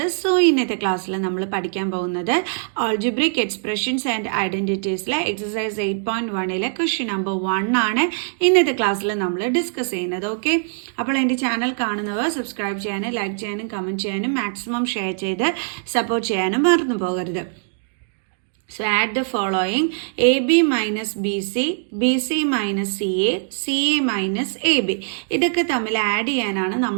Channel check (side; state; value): left; silent; digital silence